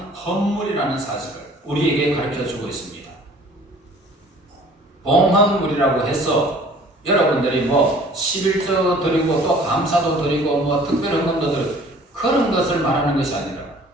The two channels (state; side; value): normal; both; correlation 0.51